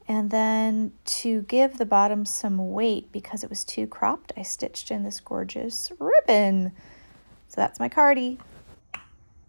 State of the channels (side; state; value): both; inverted; correlation -1.00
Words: And then to give the bottom some weight, because it was too cropped, I stitched in this gorgeous ribbon. So that's my cardi.